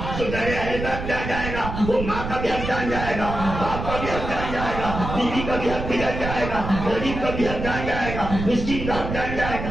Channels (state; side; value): noise; right; rumble, 6 dB below the sound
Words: تو در اہل بیت جان جائے گا. وہ ماں کا بھی حق جان جائے گا، باپ کا بھی حق جان جائے گا، بیوی کا بھی حق بھی جان جائے گا، غریب کا بھی حق جان جائے گا، مسکین کا حق جان جائے گا.